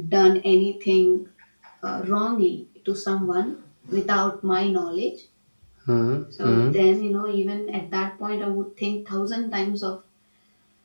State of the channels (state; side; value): inverted; both; correlation -1.00